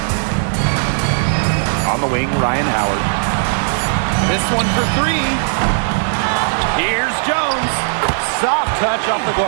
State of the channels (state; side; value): silent; left; 68 dB below the other